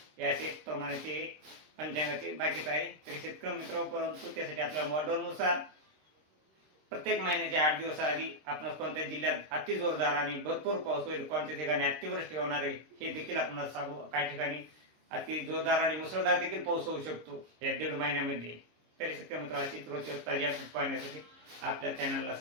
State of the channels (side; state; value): left; late; 26 ms